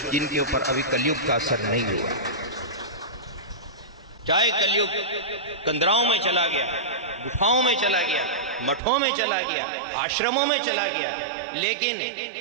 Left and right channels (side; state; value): left; drops out; at 8.8 s